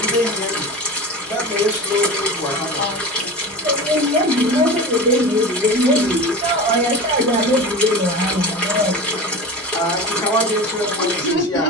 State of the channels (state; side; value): normal; both; correlation 0.30